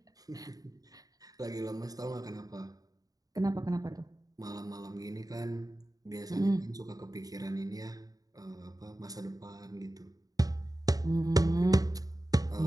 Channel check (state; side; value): late; left; 0.18 ms